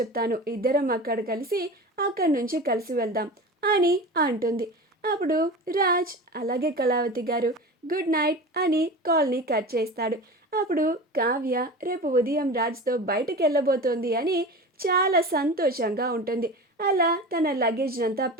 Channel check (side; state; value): both; normal; correlation 0.32